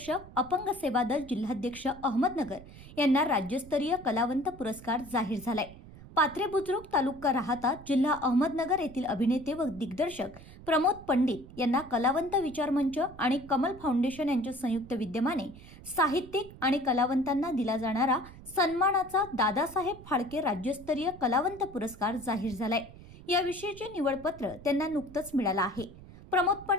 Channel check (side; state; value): right; noise; rumble, 18 dB below the sound